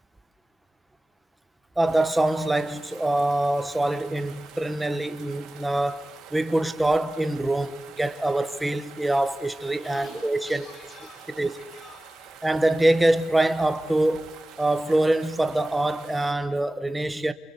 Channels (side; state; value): both; normal; correlation 0.96